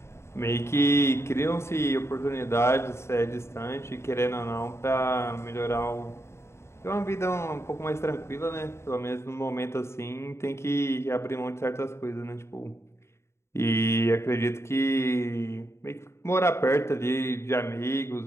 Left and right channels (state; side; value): late; right; 0.13 ms